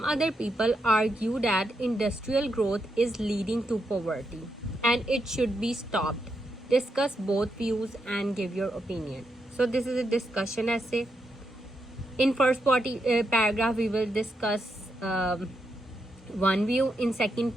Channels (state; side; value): normal; both; correlation 0.83